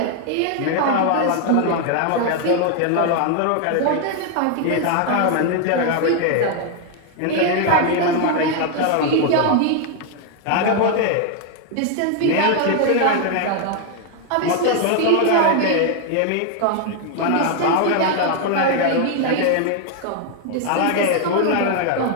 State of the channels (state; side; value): different; both; correlation 0.00